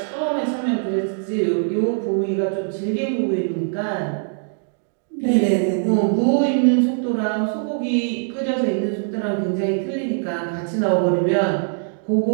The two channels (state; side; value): silent; left; digital silence